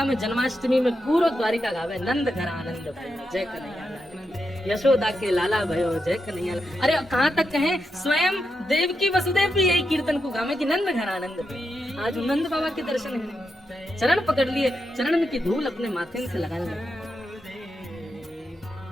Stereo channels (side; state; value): both; normal; correlation 0.86